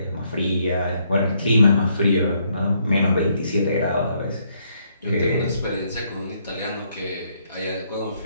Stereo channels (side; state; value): both; inverted; correlation -0.72